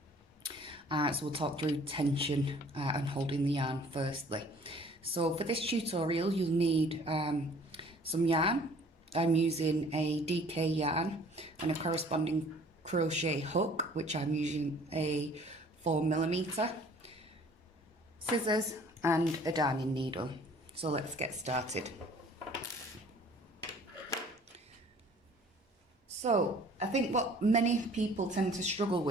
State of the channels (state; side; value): normal; both; correlation 0.53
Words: so we'll talk through tension and holding the yarn firstly. So for this tutorial you'll need some yarn. I'm using a DK yarn and a corresponding crochet hook, which I'm using a 4mm, scissors and a darning needle. So let's get started. So I think what many people tend to struggle